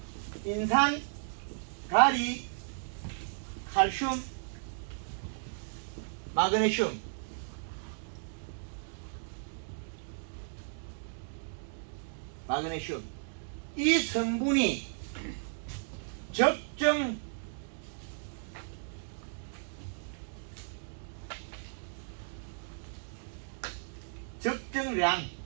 인산, 가리, 칼슘, 마그네슘, 이 성분이 적정 적정량,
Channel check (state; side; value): silent; left; digital silence